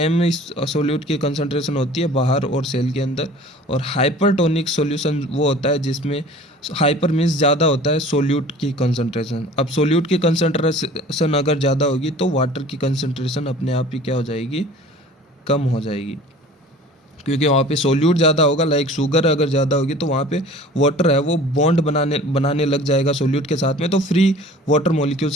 solute की कंसंट्रेशन होती है बाहर और सेल के अंदर, और हाइपरटोनिक सॉल्यूशन वो होता है जिसमें हाइपर मीन्स ज़्यादा होता है सोल्यूट की कंसंट्रेशन। अब सोल्यूट की कंसंट्रेशन अगर ज़्यादा होगी तो वाटर की कंसंट्रेशन अपने आप ही क्या हो जाएगी, कम हो जाएगी, क्योंकि वहाँ पे सोल्यूट ज़्यादा होगा। लाइक शुगर अगर ज़्यादा होगी तो वहाँ पे वाटर है वो बॉन्ड बनाने लग जाएगा सोल्यूट के साथ में, तो फ्री वाटर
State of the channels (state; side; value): normal; both; correlation 0.45